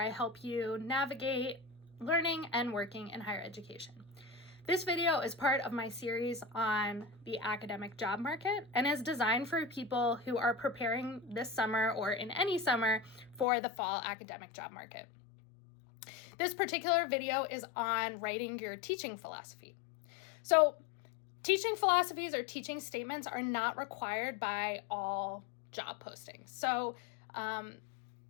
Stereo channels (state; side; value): drops out; right; at 13.5 s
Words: I help you navigate learning and working in higher education. This video is part of my series on the academic job market and is designed for people who are preparing this summer or in any summer for the fall academic job market. This particular video is on writing your teaching philosophy. So, teaching philosophies or teaching statements are not required by all job postings. So